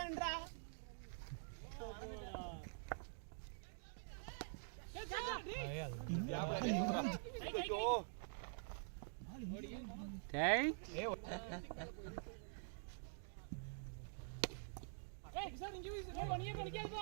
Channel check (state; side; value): silent; left; digital silence